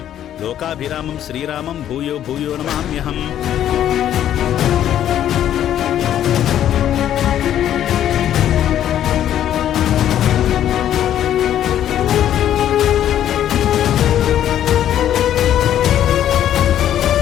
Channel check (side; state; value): right; quieter; 11.0 dB